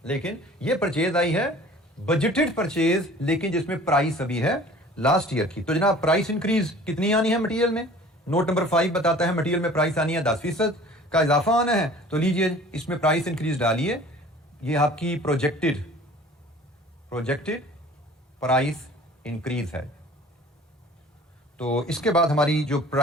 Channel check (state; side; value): normal; both; correlation 0.47